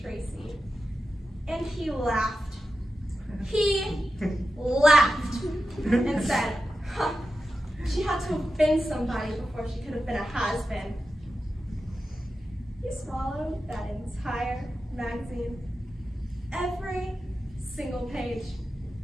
Tracy. And he laughed. He laughed and said, huh, she had to have been somebody before she could have been a has-been. He swallowed that entire magazine, every single page,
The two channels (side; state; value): both; normal; correlation 0.91